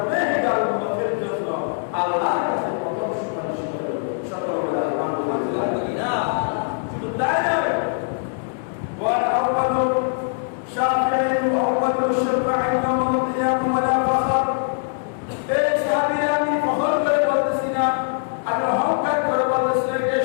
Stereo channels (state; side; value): silent; right; digital silence